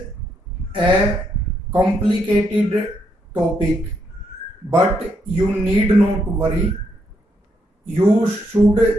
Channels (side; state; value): both; normal; correlation 0.77